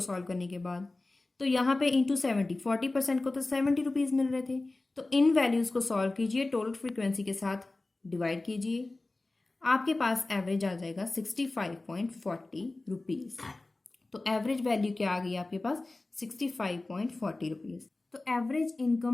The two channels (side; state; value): right; quieter; 3.1 dB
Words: करने के बाद। तो यहाँ पे इंटू 70, 40% को तो 70 रुपीज मिल रहे थे, तो इन वैल्यूज को सॉल्व कीजिए, टोटल फ्रीक्वेंसी के साथ डिवाइड कीजिए, आपके पास एवरेज आ जाएगा 65.40 रुपीज। तो एवरेज वैल्यू क्या आ गई आपके पास? 65.40 रुपीज। तो एवरेज